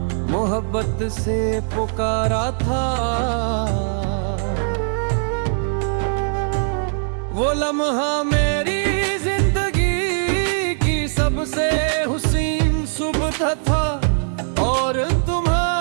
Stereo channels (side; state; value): left; silent; 62 dB below the other